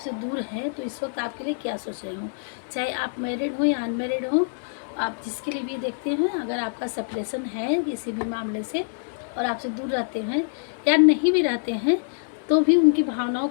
दूर हैं तो इस वक्त आपके लिए क्या सोच रही हूँ। चाहे आप मैरिड हो या अनमैरिड हो, आप जिसके लिए भी देखते हैं, अगर आपका सेपरेशन है किसी भी मामले से और आपसे दूर रहते हैं या नहीं भी रहते हैं, तो भी उनकी भावनाओं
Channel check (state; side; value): silent; right; 61 dB below the other